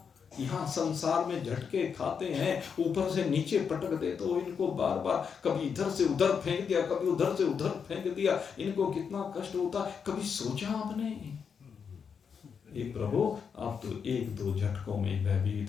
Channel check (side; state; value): right; quieter; 6.5 dB